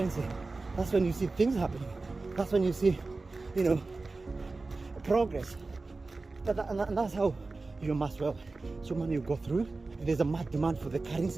That's when you see things happening. That's when you see, progress. And that's how you amass wealth. So money will go through. If there's a mad demand for the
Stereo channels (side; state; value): left; quieter; 3.6 dB